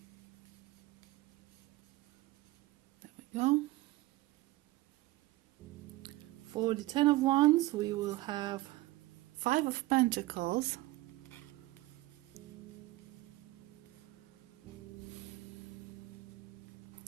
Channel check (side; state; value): left; quieter; 18.8 dB